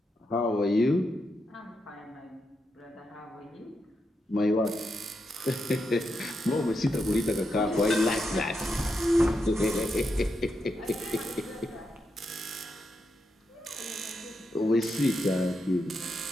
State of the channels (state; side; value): normal; both; correlation 0.84